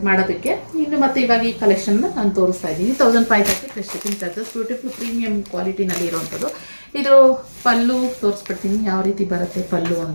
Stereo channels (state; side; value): inverted; both; correlation -1.00